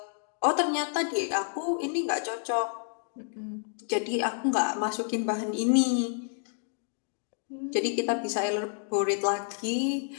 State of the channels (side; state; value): right; silent; 57 dB below the other